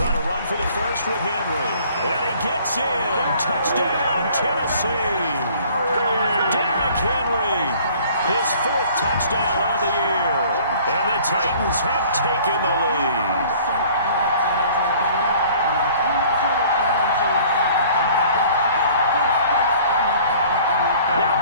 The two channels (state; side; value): inverted; both; correlation -0.53